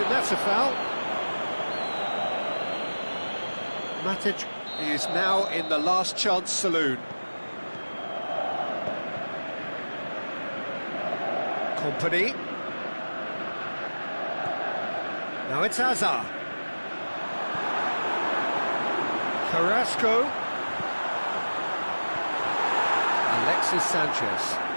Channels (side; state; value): both; inverted; correlation -1.00